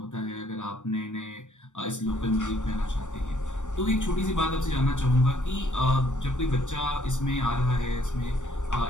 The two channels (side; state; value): right; late; 0.85 ms